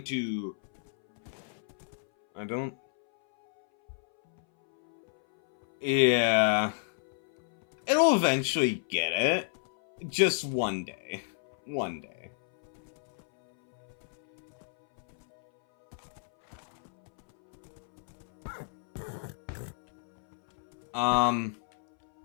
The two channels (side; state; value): right; silent; 57 dB below the other